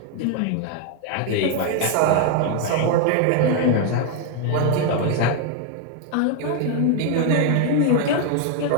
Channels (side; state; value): both; different; correlation 0.01